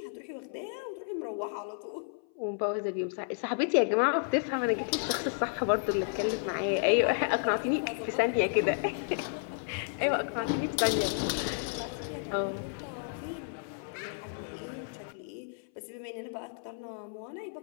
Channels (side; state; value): right; silent; 56 dB below the other